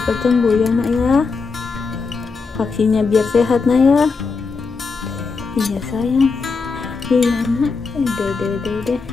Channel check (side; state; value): right; quieter; 4.7 dB